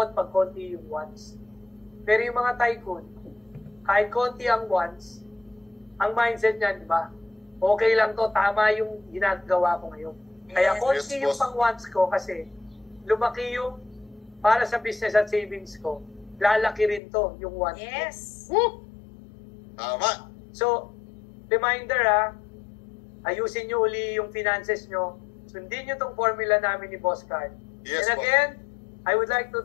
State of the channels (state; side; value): drops out; right; at 17.0 s